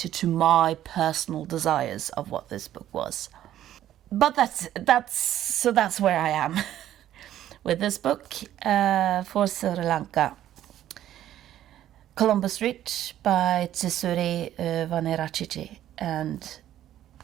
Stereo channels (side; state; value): left; quieter; 12.2 dB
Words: to my personal desires of what this book was. But that's where I am with this book, for Sri Lanka. Colombo Street by Thisuri, Wanniarachchi. And